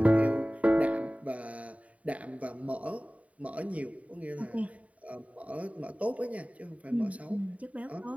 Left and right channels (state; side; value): late; left; 0.068 ms